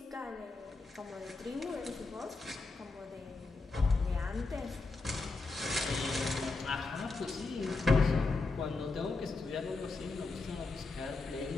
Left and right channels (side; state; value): right; quieter; 3.7 dB